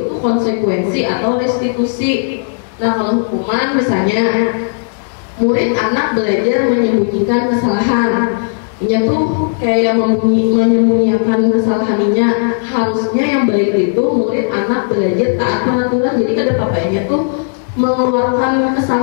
konsekuensi atau restitusi. Nah kalau hukuman misalnya murid anak belajar menyembunyikan kesalahan. Ini tuh kayak menyembunyikan kesalahannya. Harusnya yang baik itu murid anak belajar taat peraturan. Jadi kada papanya tuh mengeluarkan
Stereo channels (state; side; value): silent; right; digital silence